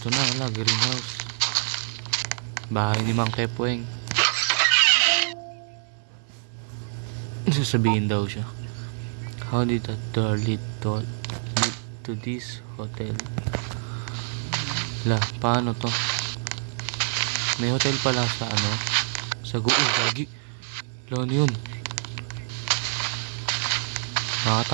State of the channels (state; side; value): silent; left; 56 dB below the other